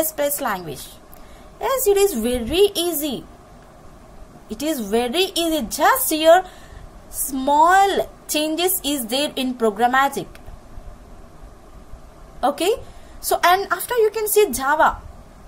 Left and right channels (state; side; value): identical; both; correlation 1.00